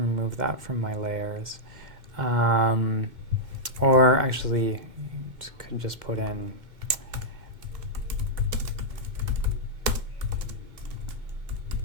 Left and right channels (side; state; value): left; late; 2.1 ms